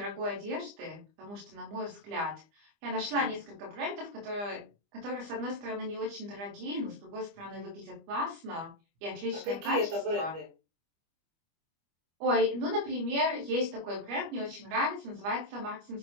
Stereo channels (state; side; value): late; left; 25 ms